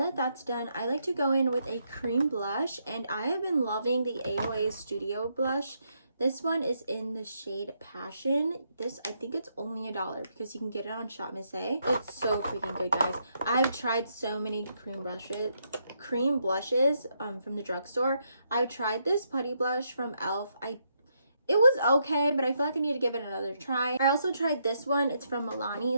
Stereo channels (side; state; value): both; inverted; correlation -0.77